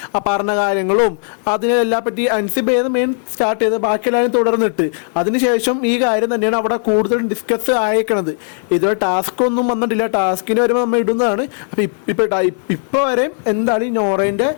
പറഞ്ഞ കാര്യങ്ങളും അതിനെല്ലാം പറ്റി അൻസിബേന്ന് മെയിൻ സ്റ്റാർട്ട് ചെയ്ത് ബാക്കിയെല്ലാവരും തുടർന്നിട്ട് അതിനുശേഷം ഈ കാര്യം തന്നെയാണ് അവിടെ കൂടുതൽ ഡിസ്കസ് ആയേക്കണത്. ഇതുവരെ ടാസ്ക് ഒന്നും വന്നിട്ടില്ല, ടാസ്കിന് വരുമ്പോൾ നമ്മൾ ഇടുന്നതാണ്. അപ്പോൾ ഇപ്പോൾ വരെ എന്താണ് ഈ നോറേൻ്റെ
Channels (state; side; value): silent; right; 64 dB below the other